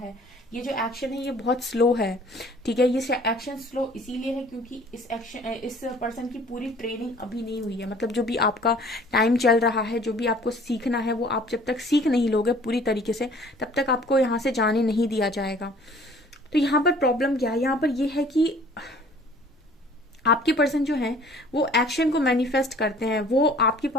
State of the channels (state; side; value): normal; both; correlation 0.52